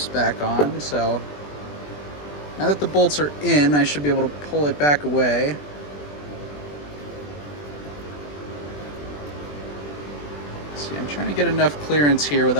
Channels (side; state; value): right; late; 20 ms